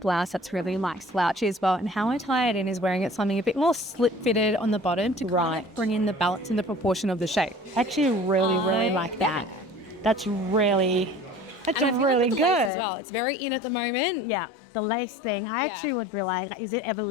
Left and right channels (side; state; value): right; drops out; at 12.7 s